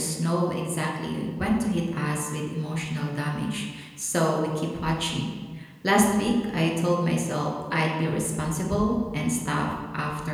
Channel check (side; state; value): both; identical; correlation 1.00